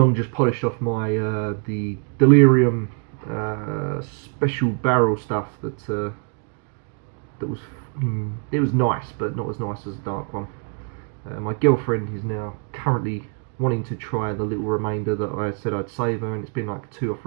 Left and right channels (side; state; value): left; quieter; 38.7 dB